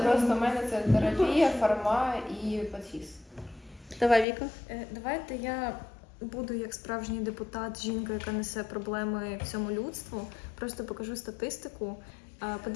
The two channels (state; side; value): drops out; right; at 4.2 s